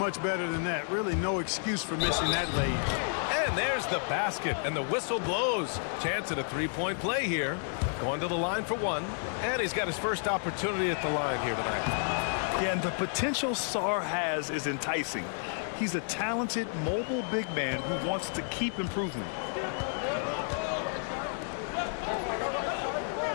better than that. Really no excuse for missing that lead. And there's the basket, and the whistle blows. Chance at a 3-point play here. Going to the line for 1. And he's got his first opportunity at the line here tonight. Yeah, and the potential Sarr has is enticing. He's a talented, mobile big man who wants to keep improving.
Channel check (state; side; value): silent; right; 57 dB below the other